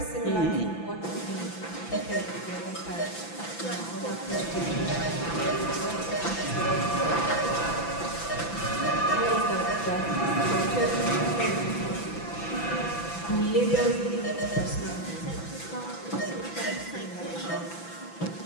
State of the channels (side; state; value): right; late; 5.9 ms